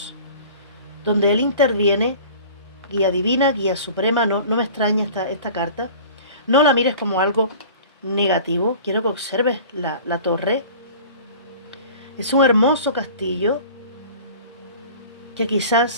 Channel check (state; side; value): inverted; both; correlation -0.43